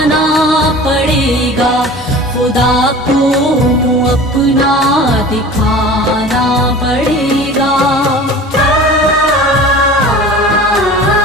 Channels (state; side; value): normal; both; correlation 0.40